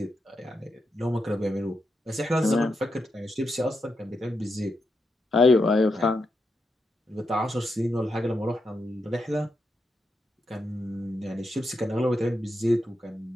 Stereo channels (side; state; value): both; normal; correlation 0.84